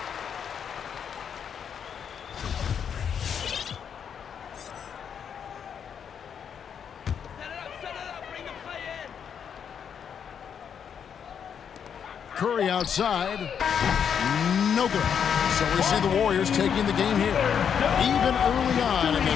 Curry outside. No good. So we see the Warriors taking the game here. Even early on in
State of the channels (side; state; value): right; quieter; 7.7 dB